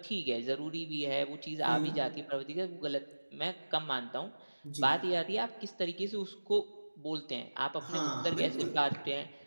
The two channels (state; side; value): inverted; both; correlation -1.00